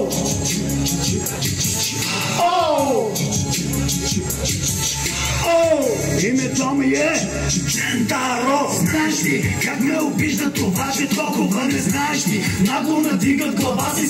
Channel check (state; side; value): identical; both; correlation 1.00